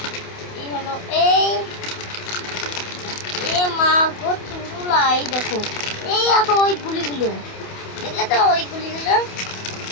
এই হলো এ মা গো চুরুলা। এই দেখো, এই দেখো ওই গুলিগুলো, দেখলে তো ওই গুলিগুলো।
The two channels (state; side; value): late; right; 28 ms